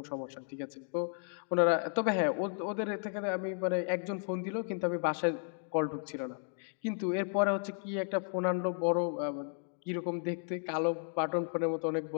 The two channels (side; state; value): right; silent; 55 dB below the other